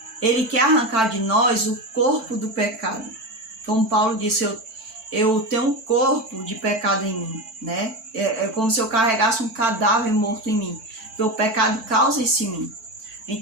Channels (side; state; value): left; late; 4.5 ms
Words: Ele quer arrancar de nós o corpo do pecado. Como Paulo disse, eu tenho um corpo de pecado em mim, né? É como se eu carregasse um cadáver morto em mim. Porque o pecado causa isso em mim.